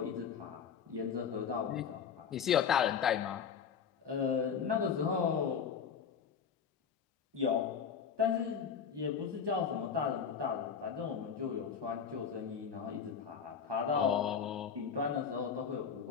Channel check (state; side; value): quieter; right; 7.0 dB